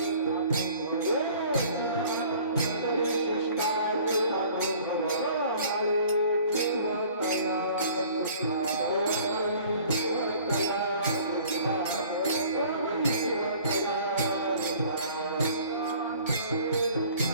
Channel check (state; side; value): inverted; both; correlation -0.51